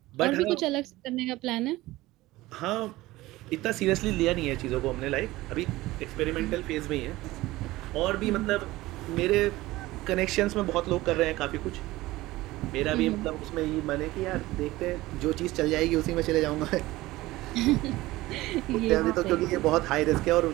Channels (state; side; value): quieter; left; 18.3 dB